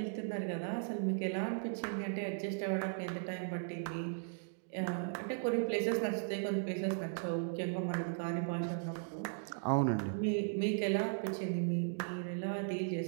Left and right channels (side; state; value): left; silent; digital silence